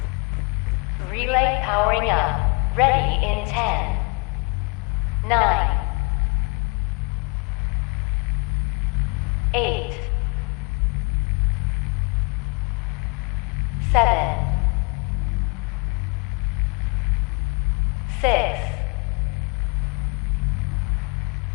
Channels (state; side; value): quieter; right; 31.8 dB